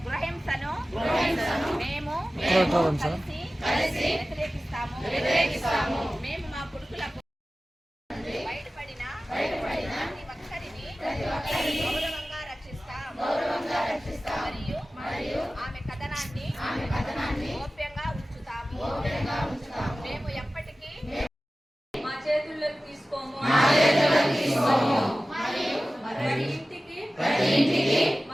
గృహహింసను మేము కలిసి వ్యతిరేకిస్తాము. మేము మా కొడుకులకు బయటపడిన ప్రతి ఒక్కరిని గౌరవంగా రక్షిస్తాం మరియు ఆమె కథనాన్ని గోప్యంగా ఉంచుతాము. మేము ఎప్పటికీ మా చేతుల్లోకి తీసుకోము. ప్రతి ఇంటికి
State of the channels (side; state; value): both; normal; correlation 0.96